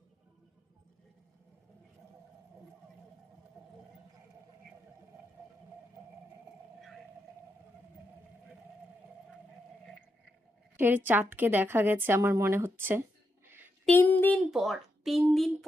এর চাঁদকে দেখা গেছে আমার মনে হচ্ছে 3 দিন পর। 3 দিন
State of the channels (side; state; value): both; normal; correlation 0.83